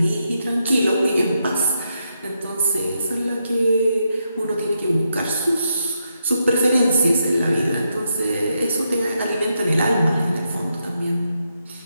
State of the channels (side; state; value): both; inverted; correlation -0.82